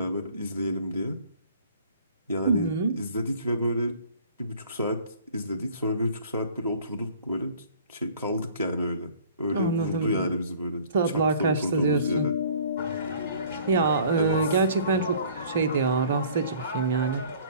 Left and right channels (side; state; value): both; inverted; correlation -0.51